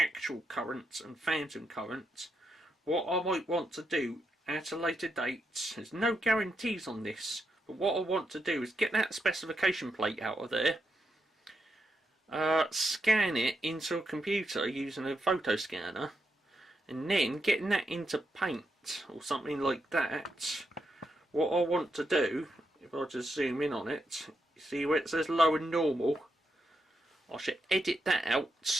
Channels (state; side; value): normal; both; correlation 0.83